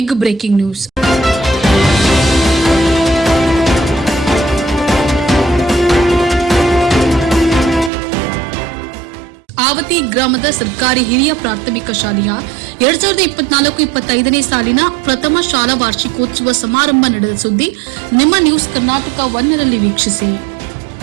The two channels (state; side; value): drops out; left; at 7.9 s